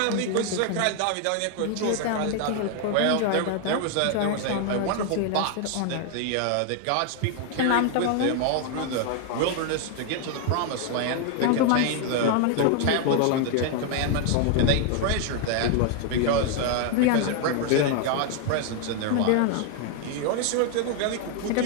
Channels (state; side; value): different; both; correlation 0.00